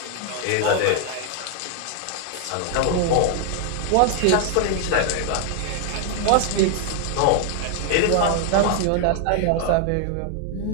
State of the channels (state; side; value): different; both; correlation 0.00